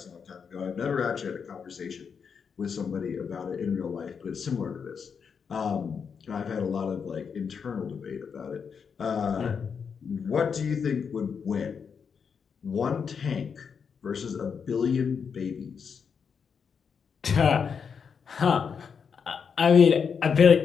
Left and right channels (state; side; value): quieter; right; 6.4 dB